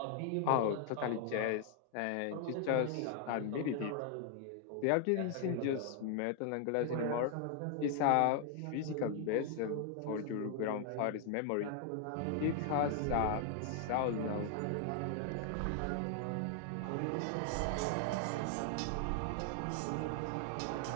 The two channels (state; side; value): different; both; correlation 0.00